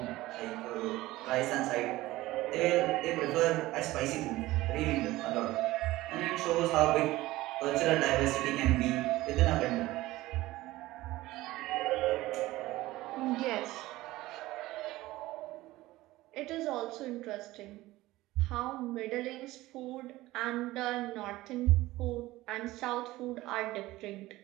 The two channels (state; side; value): quieter; left; 17.8 dB